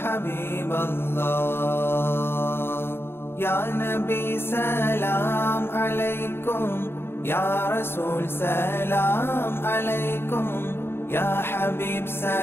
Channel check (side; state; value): right; late; 0.11 ms